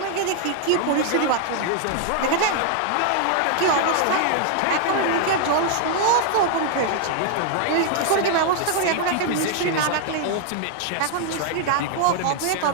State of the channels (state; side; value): different; both; correlation 0.00